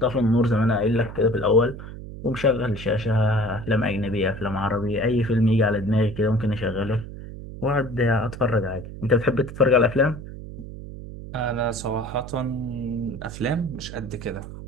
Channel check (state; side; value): noise; right; hum, 12 dB below the sound